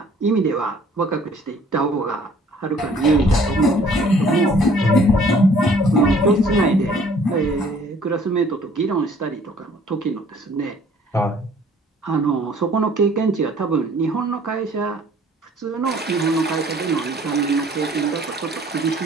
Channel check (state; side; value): normal; both; correlation 0.56